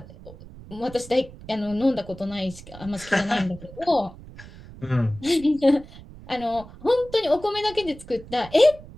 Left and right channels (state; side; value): noise; right; rumble, 17 dB below the sound